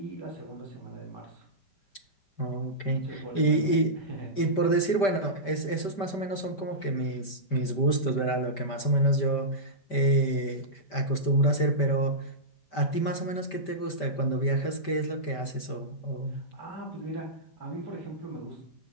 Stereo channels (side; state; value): right; late; 5.1 ms